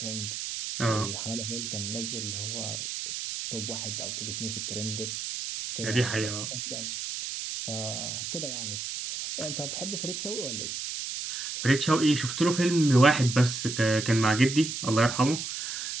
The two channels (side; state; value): right; noise; hiss, 5 dB below the sound